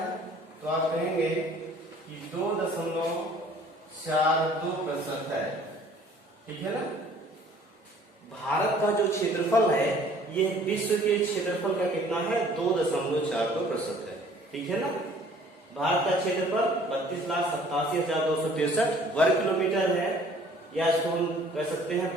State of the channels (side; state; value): both; normal; correlation 0.54